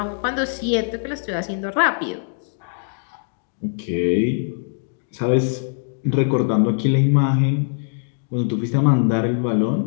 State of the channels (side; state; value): right; silent; digital silence